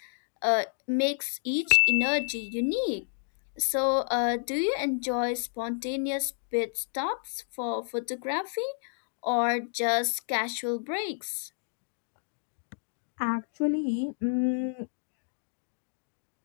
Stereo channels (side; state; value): right; silent; digital silence